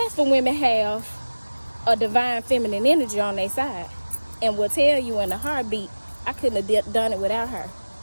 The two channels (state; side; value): inverted; both; correlation -1.00